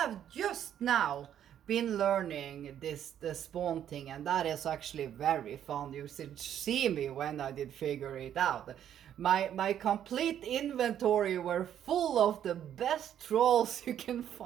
just now been learning the spawn thing, and that is actually very fun. You should see me when I did figure it out. My complete inventory were full of the best trolls you can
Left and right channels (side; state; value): left; quieter; 10.1 dB